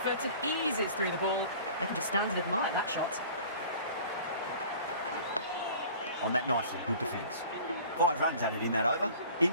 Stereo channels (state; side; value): inverted; both; correlation -0.45